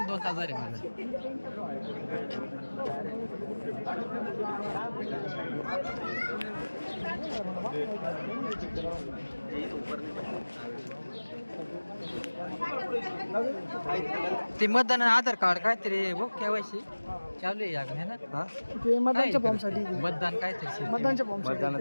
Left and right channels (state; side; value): inverted; both; correlation -1.00